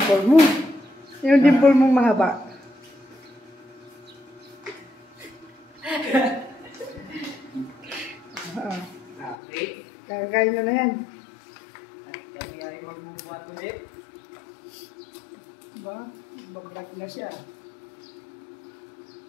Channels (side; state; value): right; drops out; at 9.3 s